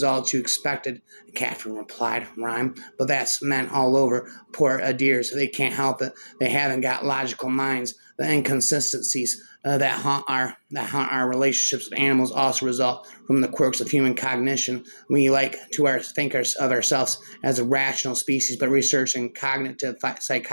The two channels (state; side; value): inverted; both; correlation -1.00